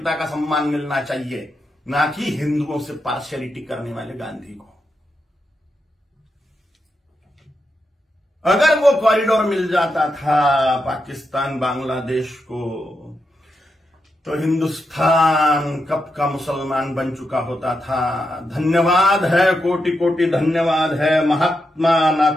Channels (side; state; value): both; normal; correlation 0.85